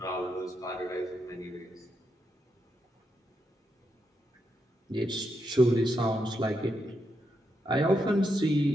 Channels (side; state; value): both; normal; correlation 0.82